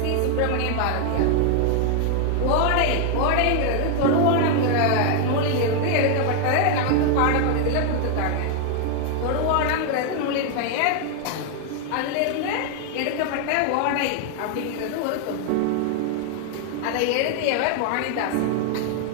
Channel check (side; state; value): both; different; correlation 0.00